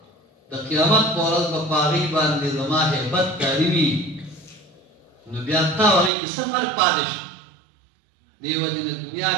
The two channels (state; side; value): drops out; left; at 6.1 s